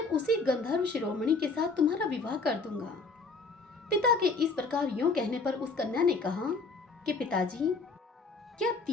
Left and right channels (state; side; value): quieter; right; 3.9 dB